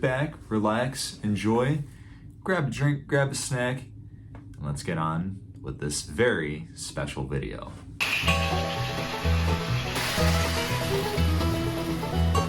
relax, enjoy, grab a drink, grab a snack, and let's get on with this very special video.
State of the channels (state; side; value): identical; both; correlation 1.00